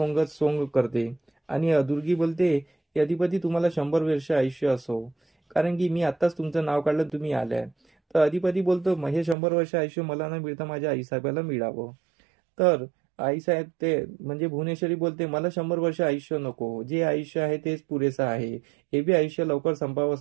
करते आणि दुर्गी बोलते की अधिपती तुम्हाला 100 वर्ष आयुष्य असो, कारण की मी आत्ताच तुमचं नाव काढलं तुम्ही आल्याय. तर अधिपती बोलतो हे 100 वर्ष आयुष्य मला न मिळता माझ्या आईसाहेबाला मिळावं. तर आईसाहेब ते म्हणजे भुवनेश्वरी बोलते मला 100 वर्ष आयुष्य नको, जे आयुष्य आहे तेच पुरेसं आहे, हे बी आयुष्य लवकर संपावं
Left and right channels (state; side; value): drops out; left; at 9.3 s